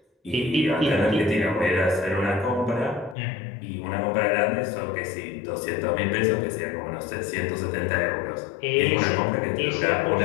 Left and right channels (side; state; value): right; drops out; at 3.2 s